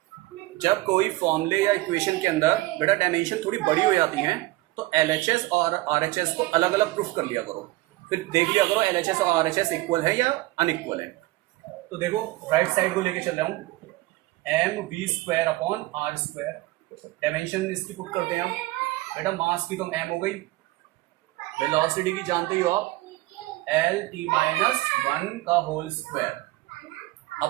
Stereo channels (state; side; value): quieter; left; 19.5 dB